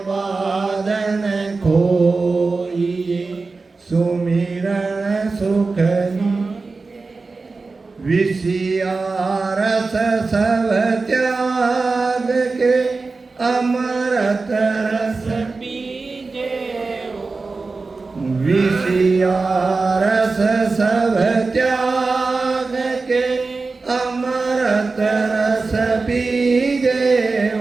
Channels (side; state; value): left; quieter; 4.0 dB